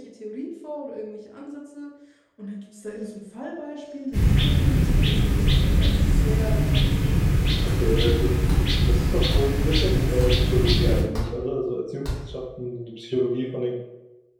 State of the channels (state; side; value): identical; both; correlation 1.00